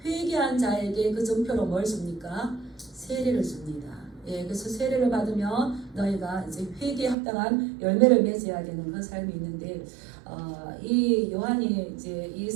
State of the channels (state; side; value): drops out; left; at 7.2 s